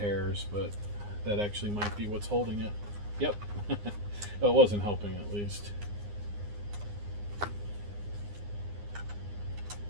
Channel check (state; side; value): late; left; 9.7 ms